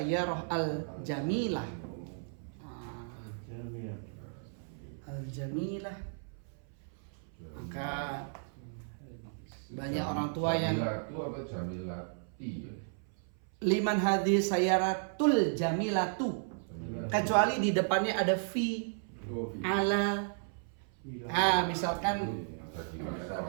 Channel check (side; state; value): left; silent; 55 dB below the other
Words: al-jamilah. Al-jamilah. Maka banyak orang tua yang Jamilatu apa jamilati? liman hadhihi sayyaratul jamilatu. Kecuali di depannya ada fi, ala. Misalkan